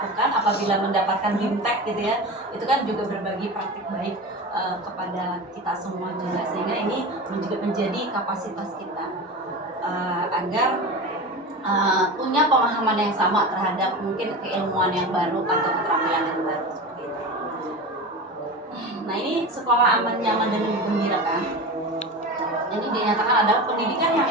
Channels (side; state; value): both; normal; correlation 0.28